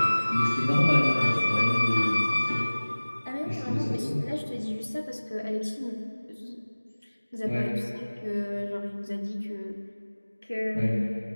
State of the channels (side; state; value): both; inverted; correlation -1.00